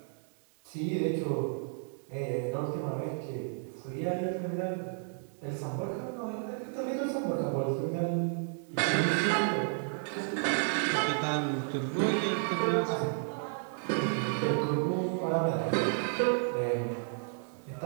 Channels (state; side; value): silent; left; 56 dB below the other